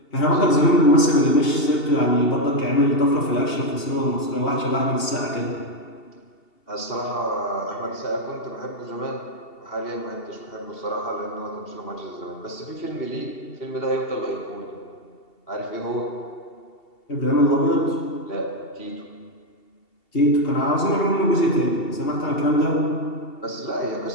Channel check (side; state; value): right; late; 2.7 ms